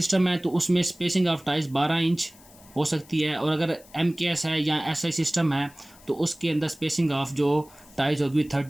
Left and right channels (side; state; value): left; noise; hiss, 24 dB below the sound